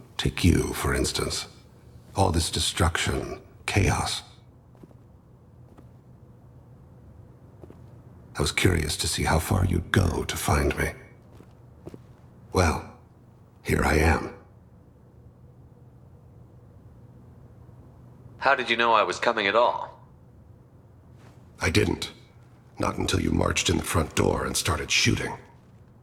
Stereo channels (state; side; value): identical; both; correlation 1.00